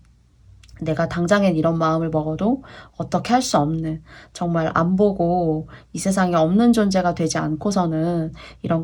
내가 당장엔 이런 마음을 먹어도 어떻게 할 수 없는, 정말 안 보고 이 세상에 없는 존재가 되지 않고서는 이런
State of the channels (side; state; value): both; identical; correlation 1.00